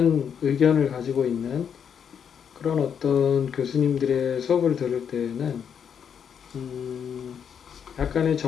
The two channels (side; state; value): right; quieter; 7.7 dB